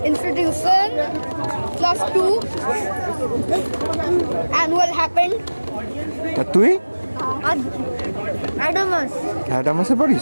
institution, class 2, annual happened. আর তুই? অ্যাডামাস। অ্যাডামাসে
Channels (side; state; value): both; inverted; correlation -1.00